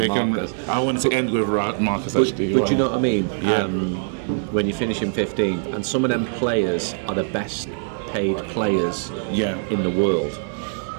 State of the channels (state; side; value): silent; left; 64 dB below the other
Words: Marcus. I wanted to end with Marcus actually. But you know what I mean? When you finish in 15th, and some of them players are the best paid players in the world.